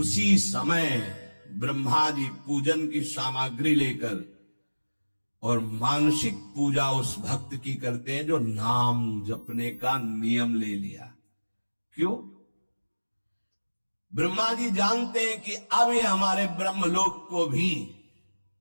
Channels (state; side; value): inverted; both; correlation -1.00